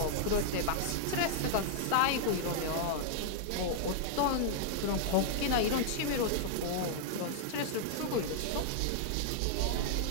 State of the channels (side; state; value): both; different; correlation -0.01